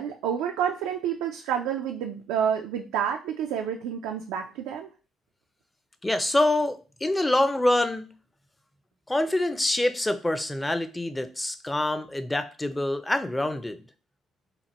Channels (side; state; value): both; normal; correlation 0.81